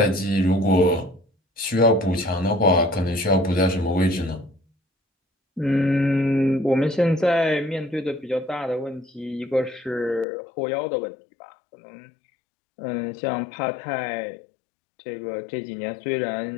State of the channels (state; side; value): drops out; right; at 10.2 s